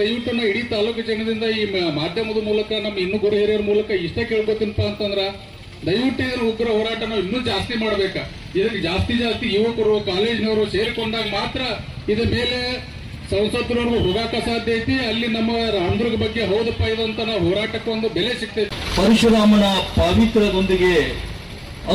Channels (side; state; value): both; identical; correlation 1.00